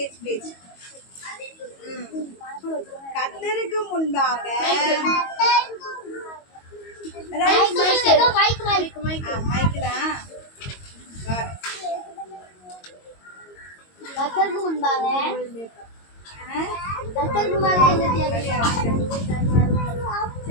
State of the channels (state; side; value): late; right; 22 ms